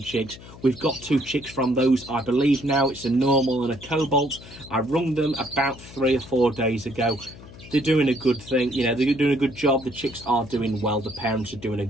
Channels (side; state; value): left; noise; hum, 18 dB below the sound